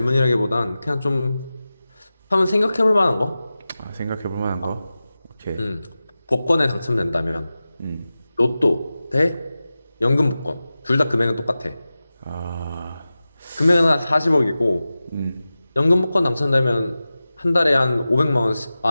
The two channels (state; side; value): inverted; both; correlation -0.95